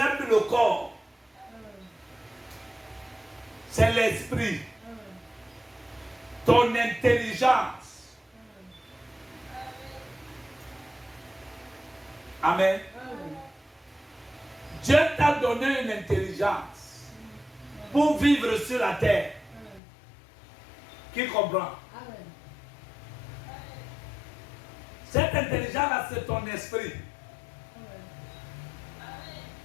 plus le corps. C'est l'esprit. Ton intelligence. Amen. Dieu t'a donné une intelligence pour vivre sur la terre. Qui comprend? Cette intelligence-là, c'est ton esprit.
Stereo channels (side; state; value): right; drops out; at 19.8 s